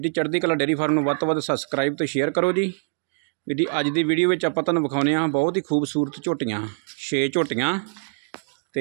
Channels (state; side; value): silent; left; digital silence